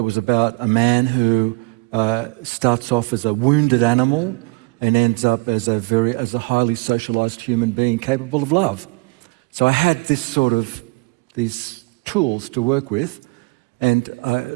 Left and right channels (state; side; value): quieter; left; 27.3 dB